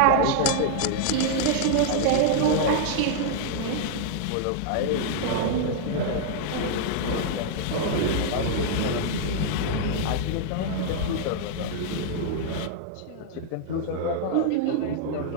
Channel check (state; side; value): different; both; correlation -0.01